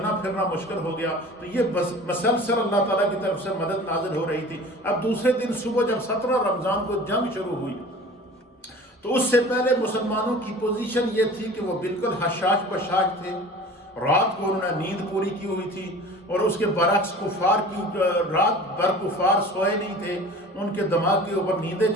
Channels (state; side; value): normal; both; correlation 0.41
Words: پھرنا مشکل ہو گیا۔ تو یہ مسلسل اللہ تعالیٰ کی طرف سے مدد نازل ہو رہی تھی۔ اب دوسرے دن صبح جب 17 رمضان کو جنگ شروع ہوئی تو اس سے پہلے مسلمانوں کی پوزیشن یہ تھی کہ وہ بالکل حشاش بشاش تھے، رات کو انہوں نے نیند پوری کی ہوئی تھی، اور اس کے برعکس کفار کی رات بھر کفار سوئے نہیں تھے، ان کے دماغ کے اوپر نیندیں